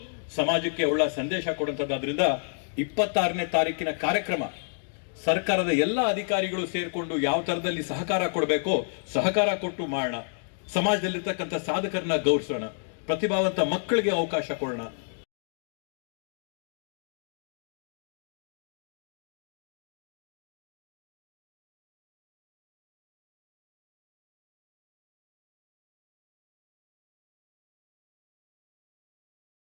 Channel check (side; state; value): right; silent; digital silence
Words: ಸಮಾಜಕ್ಕೆ ಒಳ್ಳೆ ಸಂದೇಶ ಕೊಡುವಂಥದ್ದು. ಆದ್ರಿಂದ 26ನೇ ತಾರೀಕಿನ ಕಾರ್ಯಕ್ರಮ ಸರ್ಕಾರದ ಎಲ್ಲ ಅಧಿಕಾರಿಗಳು ಸೇರ್ಕೊಂಡು ಯಾವ ತರದಲ್ಲಿ ಸಹಕಾರ ಕೊಡಬೇಕೋ ಸಹಕಾರ ಕೊಟ್ಟು ಮಾಡೋಣ. ಸಮಾಜದಲ್ಲಿರ್ತಕ್ಕಂಥ ಸಾಧಕರನ್ನ ಗೌರವಿಸೋಣ, ಪ್ರತಿಭಾವಂತ ಮಕ್ಕಳಿಗೆ ಅವಕಾಶ ಕೊಡೋಣ.